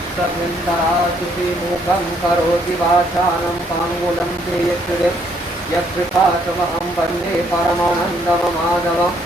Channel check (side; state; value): both; normal; correlation 0.68